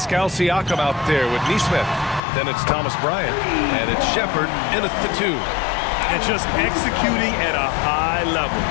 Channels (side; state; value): right; drops out; at 2.2 s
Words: Siakam out there with Neesmith. Then it's Thomas Bryant, and it's Shepard in at the 2. And just executing at a high level.